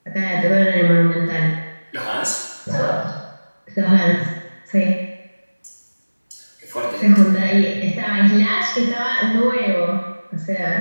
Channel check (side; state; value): both; inverted; correlation -1.00